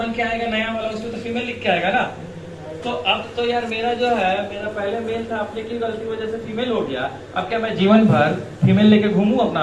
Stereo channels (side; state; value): both; identical; correlation 1.00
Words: के आएगा नया वाला, उसमें तो फीमेल लिख के आएगा ना। तो अब तो यार मेरा जो है, मेरा पहले मेल था, अपने की गलती वजह से फीमेल हो गया, अब क्या मैं जीवन भर फीमेल लेके घूमूं अपना